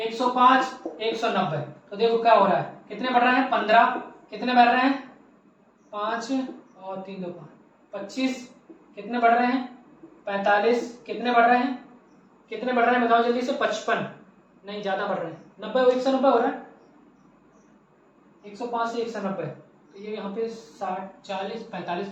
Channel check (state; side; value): identical; both; correlation 1.00